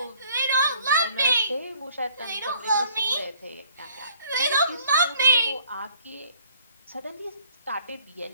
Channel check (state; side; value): inverted; both; correlation -0.59